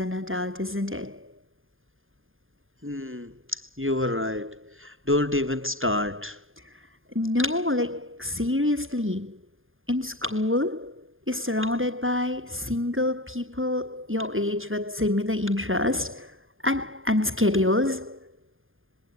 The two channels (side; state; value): left; late; 0.59 ms